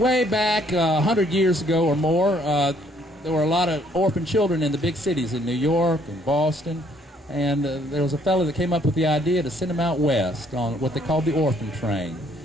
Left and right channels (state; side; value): normal; both; correlation 0.65